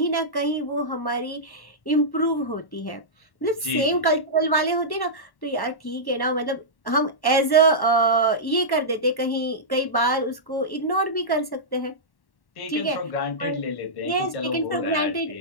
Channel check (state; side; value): late; right; 1.1 ms